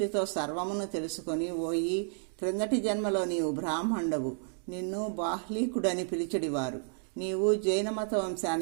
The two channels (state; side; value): silent; left; digital silence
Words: సర్వమును తెలుసుకొని, ఓయి, క్రిందటి జన్మలో నీవు బ్రాహ్మణుడవు, నిన్ను బాహ్లీకుడని పిలిచడివారు. నీవు జైన మత